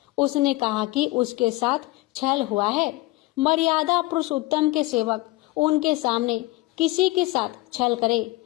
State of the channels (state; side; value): quieter; right; 19.8 dB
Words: उसने कहा कि उसके साथ छल हुआ है। मर्यादा पुरुषोत्तम के सेवक उनके सामने किसी के साथ छल करे,